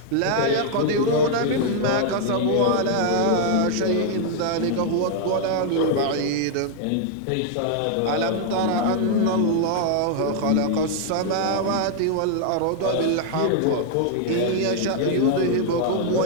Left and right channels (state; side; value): different; both; correlation 0.00